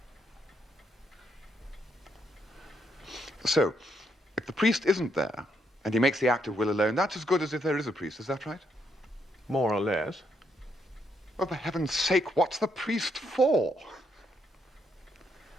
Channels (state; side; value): normal; both; correlation 0.76